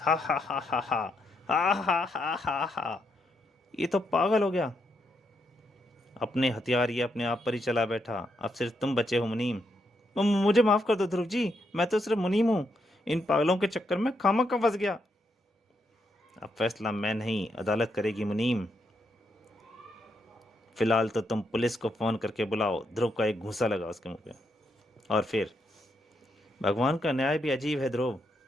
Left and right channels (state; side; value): normal; both; correlation 0.80